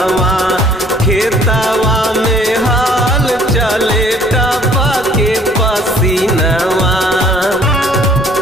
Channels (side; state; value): both; normal; correlation 0.57